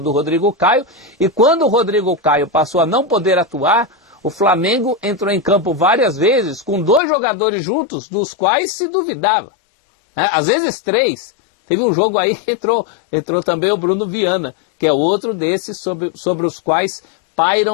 Rodrigo Caio, e quando o Rodrigo Caio passou a não poder atuar, o Flamengo entrou em campo várias vezes com 2 jogadores juntos, dos quais se duvidava. Às vezes 3. Teve um jogo aí que entrou também o Bruno Viana, que é outro desses sobre os quais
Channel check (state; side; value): drops out; right; at 7.0 s